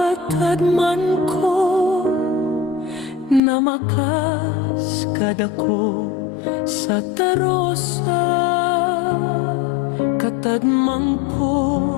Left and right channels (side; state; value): right; drops out; at 3.4 s